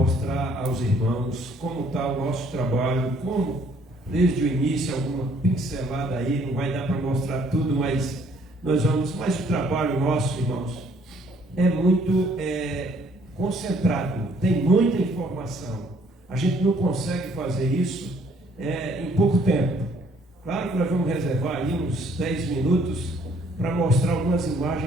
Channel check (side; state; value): both; normal; correlation 0.63